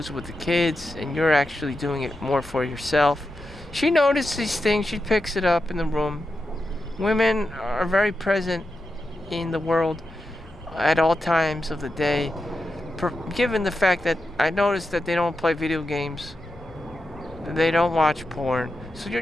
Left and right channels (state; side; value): normal; both; correlation 0.89